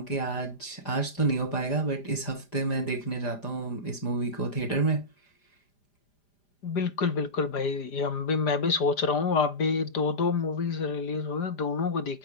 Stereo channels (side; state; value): right; late; 5.0 ms